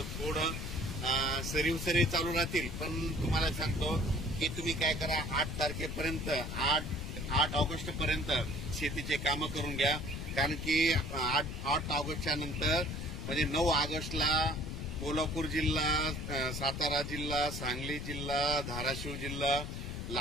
थोडं सरी चालू राहतील. पण तुम्हाला सांगतो की तुम्ही काय करा, 8 तारखेपर्यंत 8 ऑगस्ट पर्यंत शेतीचे कामं करून घ्या. कारण की 8 ऑगस्टच्या नंतर म्हणजे 9 ऑगस्टला कोल्हापूर जिल्हा, सातारा जिल्हा, सांगली जिल्हा, धाराशिव जिल्हा,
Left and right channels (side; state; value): left; noise; rumble, 5 dB below the sound